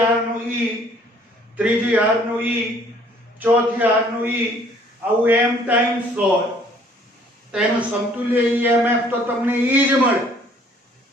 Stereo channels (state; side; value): normal; both; correlation 0.59